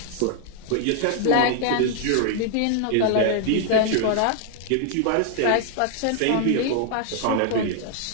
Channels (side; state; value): both; different; correlation 0.00